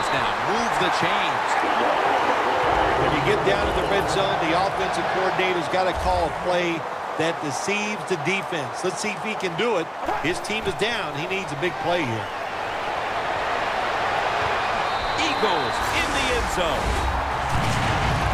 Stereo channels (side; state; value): both; identical; correlation 1.00